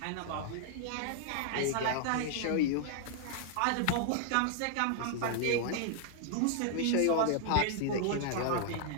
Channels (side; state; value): both; different; correlation 0.00